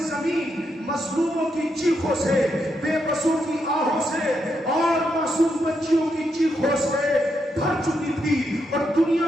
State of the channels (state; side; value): normal; both; correlation 0.81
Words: زمین مظلوموں کی چیخوں سے، بے بسوں کی آہوں سے اور معصوم بچیوں کی چیخوں سے بھر چکی تھی اور